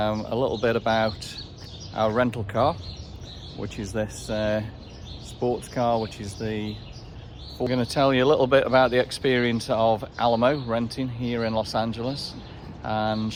little bit about our rental car, which is this sports car, which is we're going to tell you a little bit about the experience of Alamo renting here in Los Angeles and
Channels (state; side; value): identical; both; correlation 1.00